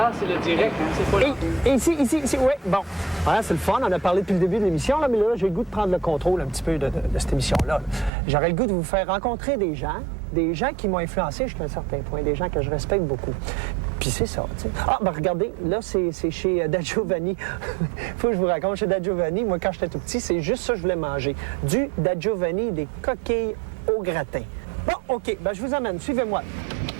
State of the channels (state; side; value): drops out; left; at 8.1 s